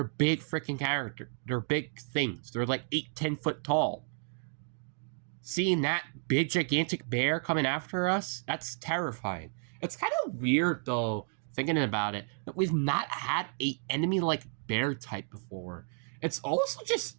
big freaking character. They're big things. They're like 8-10 foot tall. Seeing that big gigantic bear coming after us, that's terrifying. It's kind of weird though, thinking about it, that we've not had a enemy like bear type before. It's also just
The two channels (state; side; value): silent; left; 56 dB below the other